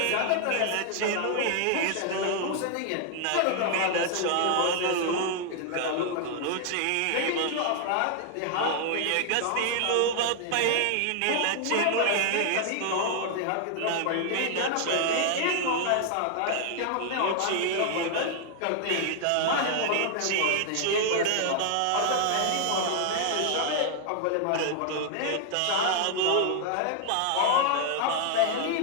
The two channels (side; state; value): both; different; correlation 0.00